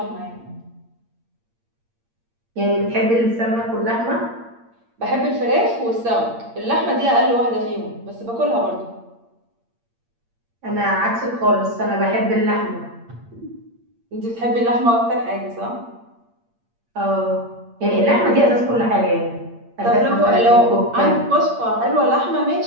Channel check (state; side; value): late; left; 8.7 ms